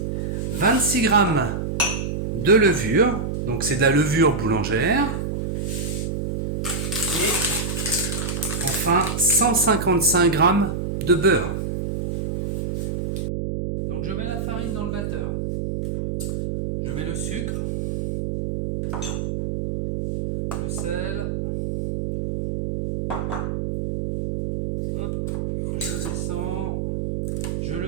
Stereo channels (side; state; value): right; noise; hum, 3 dB below the sound